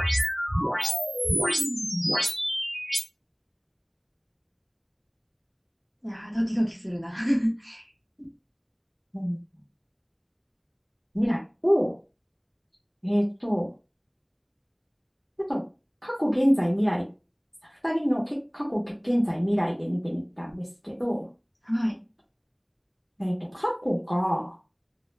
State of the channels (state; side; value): identical; both; correlation 1.00